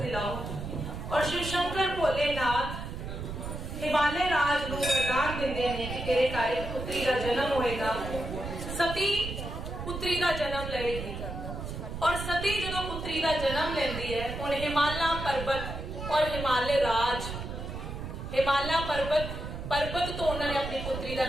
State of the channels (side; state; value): right; noise; rumble, 7 dB below the sound